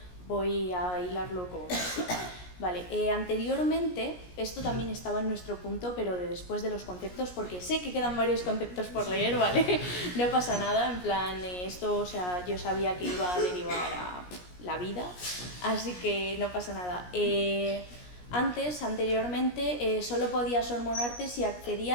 voy a hilarlo con... Vale, anteriormente, esto también estaba en nuestro punto, pero de después de los conceptos, porque sé que quedan varios conceptos por leer, ¿vale? No pasa nada, en plan, esto, o sea, yo sabía que iba a derivar a la vida, así que no pasa nada. Anteriormente, solo podías hormonarte si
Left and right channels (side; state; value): right; late; 17 ms